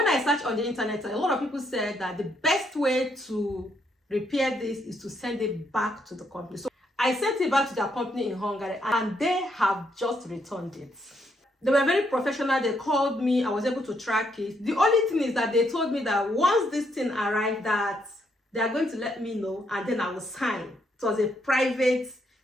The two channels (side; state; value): both; normal; correlation 0.75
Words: I searched on the internet, a lot of people said that the best way to repair this is to send it back to the company. So I sent it back to their company in Hungary, and they have just returned it. They were very professional. They called me. I was able to track it. The only thing is that they told me that once this thing arrived, that they are going to let me know, and then I will sign. It was a private,